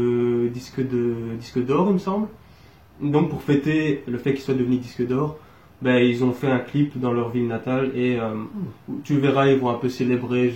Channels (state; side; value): identical; both; correlation 1.00